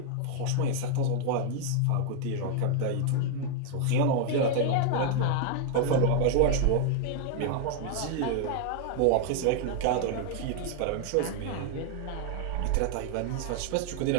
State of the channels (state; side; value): different; both; correlation 0.00